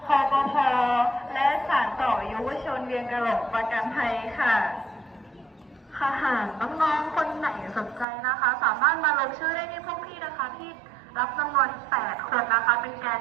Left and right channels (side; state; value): left; drops out; at 8.1 s